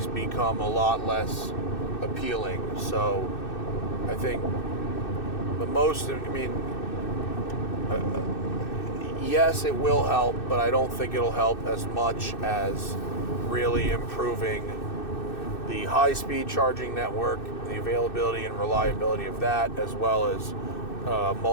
become a lot less appealing. So I think yes, it will help, but I don't think it'll help as much as really improving the high-speed charging network, the availability and reliability of that, as well as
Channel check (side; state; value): right; late; 2.6 ms